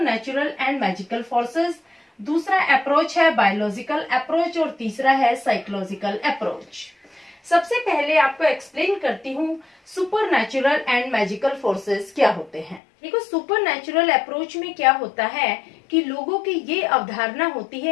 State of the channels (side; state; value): right; drops out; at 12.8 s